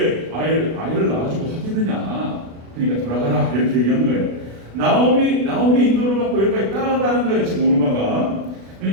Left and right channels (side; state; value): left; late; 36 ms